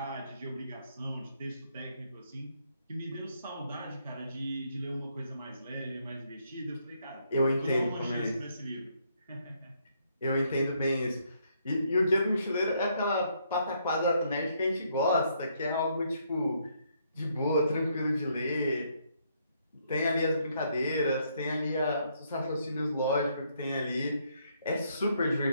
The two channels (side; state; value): both; inverted; correlation -0.72